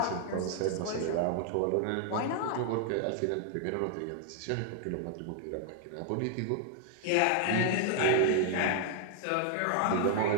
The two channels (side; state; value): both; different; correlation 0.00